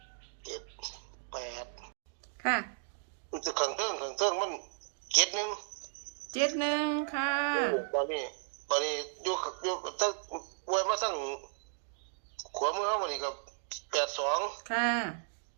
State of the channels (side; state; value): left; silent; digital silence